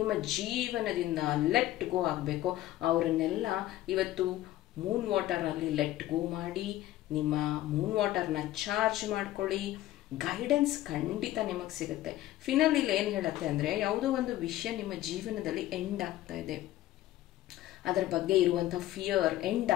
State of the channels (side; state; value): right; quieter; 14.7 dB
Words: ಜೀವನದಿಂದ ಲೆಟ್ ಗೋ ಆಗಬೇಕು, ಅವರನ್ನೆಲ್ಲ ಇವತ್ತು ಮೂನ್ ವಾಟರಲ್ಲಿ ಲೆಟ್ ಗೋ ಮಾಡಿ ನಿಮ್ಮ ಮೂನ್ ವಾಟರ್ನ ಚಾರ್ಜ್ ಮಾಡ್ಕೊಳ್ಳಿ. ಗೈಡೆನ್ಸ್ ಖಂಡಿತ ನಿಮಗೆ ಸಿಗುತ್ತೆ. ಫಿನಲ್ ಇಲ್ಲಿ ಏನು ಹೇಳುತ್ತೆ ಅಂದರೆ, ಯಾವುದೋ ಒಂದು ವಿಷಯ ನಿಮ್ಮ ಜೀವನದಲ್ಲಿ ಎಂಡ್ ಆಗ್ತಾ ಇದೆ, ಅದರ ಬಗ್ಗೆ ಇರುವಂಥ ಫಿಯರ್ ಎಂಡ್